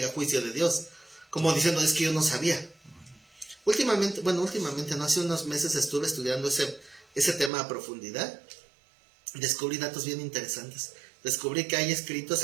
juicio de Dios. Como diciendo, es que yo no sabía. Últimamente, no, hace unos meses estuve estudiando ese tema a profundidad. Descubrí datos bien interesantes. Descubrí que hay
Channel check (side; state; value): left; drops out; at 7.5 s